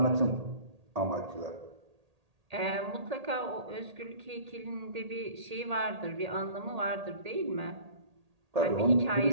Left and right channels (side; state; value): left; late; 1.8 ms